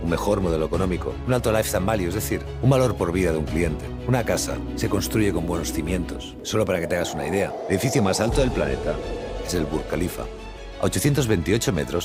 un mejor modelo económico, un alto lifetime value, es decir, un valor por vida de un cliente? Una casa se construye con buenos cimientos. Solo para que te hagas una idea, el edificio más alto del planeta es el Burj Khalifa. A 828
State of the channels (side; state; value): both; identical; correlation 1.00